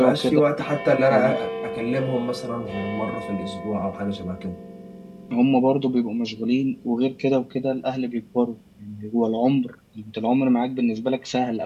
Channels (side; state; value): both; identical; correlation 1.00